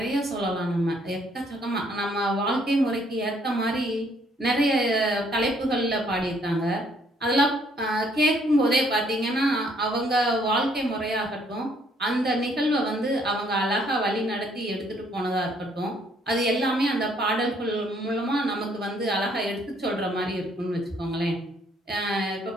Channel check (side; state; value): both; normal; correlation 0.66